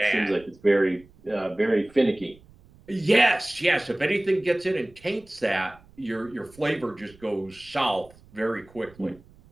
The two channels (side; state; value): right; noise; rumble, 26 dB below the sound